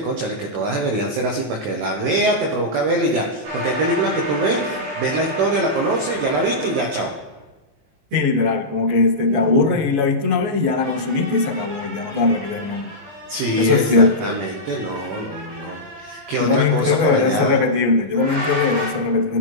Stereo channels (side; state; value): left; late; 19 ms